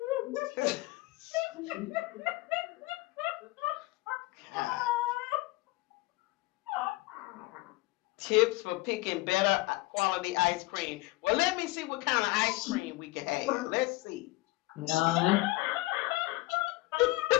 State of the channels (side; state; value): right; quieter; 20.8 dB